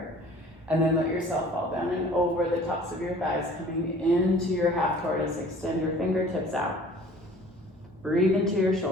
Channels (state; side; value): normal; both; correlation 0.49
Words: And then let yourself fall down and over the tops of your thighs, coming into your half tortoise. Extend your fingertips out. Breathe into your